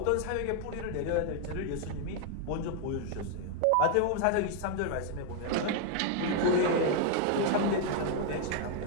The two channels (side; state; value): both; different; correlation 0.00